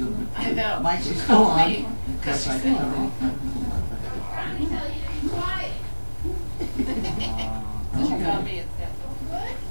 I know. mic She was still told on. me, Of 'cause course, she I said- told her. She called me instead.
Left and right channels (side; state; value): both; inverted; correlation -1.00